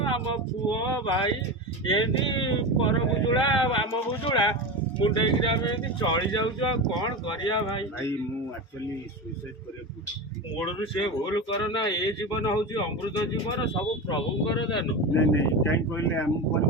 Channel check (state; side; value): normal; both; correlation 0.22